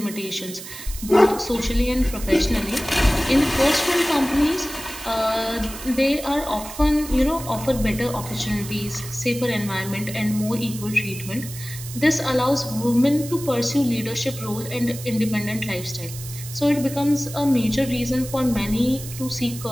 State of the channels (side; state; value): right; noise; hiss, 12 dB below the sound